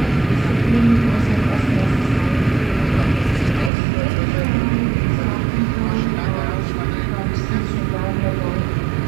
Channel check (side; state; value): left; drops out; at 3.7 s